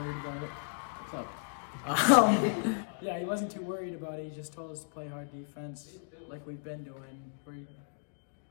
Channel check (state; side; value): silent; right; digital silence